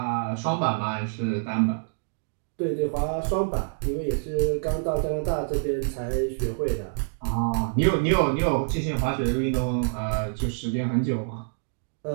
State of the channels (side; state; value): left; silent; digital silence